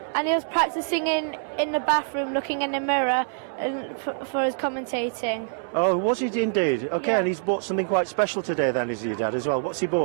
and he was practicing in the bathroom, looking in the mirror and for his commentating. Oh, was he indeed? Okay, Yeah. and he's bought something quite special today then, is your dad as well? What's he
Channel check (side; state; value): left; silent; 62 dB below the other